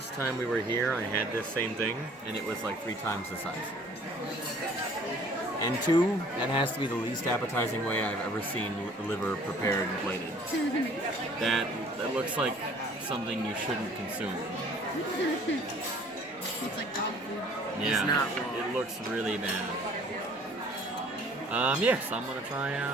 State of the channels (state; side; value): normal; both; correlation 0.54